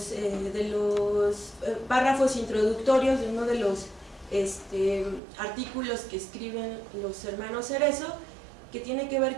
párrafos introductorios de uno de los artículos que escriben los hermanos Cerezo, que tiene que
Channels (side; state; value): left; drops out; at 5.2 s